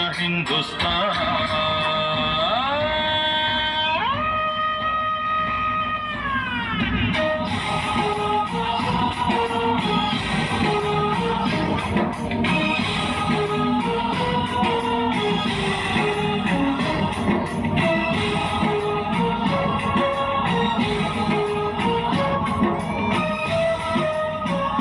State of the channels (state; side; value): identical; both; correlation 1.00